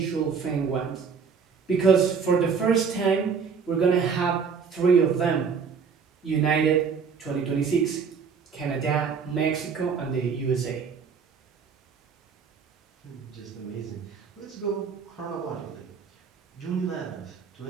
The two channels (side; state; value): left; quieter; 5.9 dB